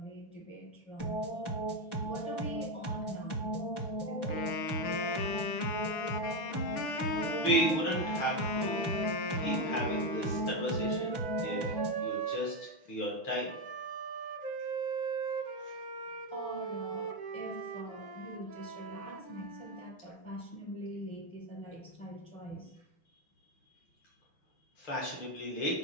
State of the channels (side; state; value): right; late; 6.2 ms